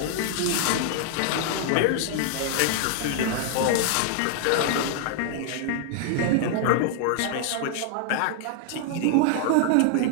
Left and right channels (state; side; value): different; both; correlation 0.00